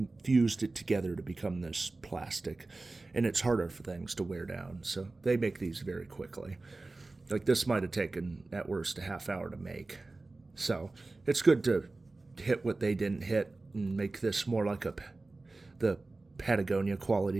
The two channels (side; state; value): left; quieter; 3.3 dB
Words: fused it together to become this plastic, and it's harder for things to wear down. So they make these very quickly. Like this might have taken at worst a half hour to make. So it's good to hit what they didn't hit and make this more like the Patagonia